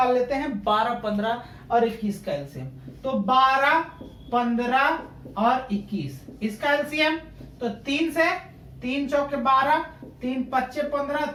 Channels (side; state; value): both; identical; correlation 1.00